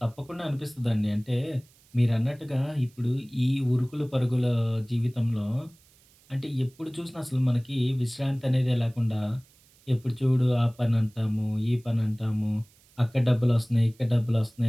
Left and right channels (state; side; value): noise; right; hiss, 30 dB below the sound